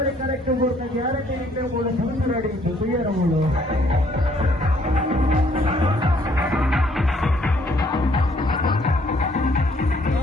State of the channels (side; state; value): both; normal; correlation 0.64